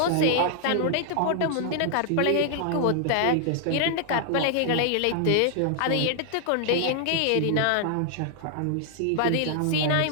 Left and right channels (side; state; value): both; different; correlation 0.00